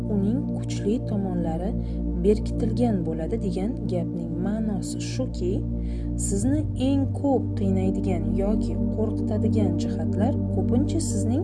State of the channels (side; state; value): both; identical; correlation 1.00